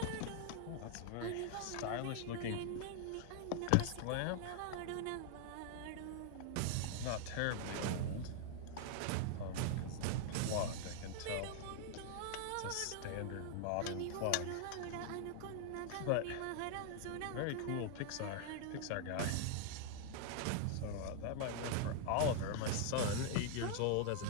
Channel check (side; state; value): both; different; correlation 0.00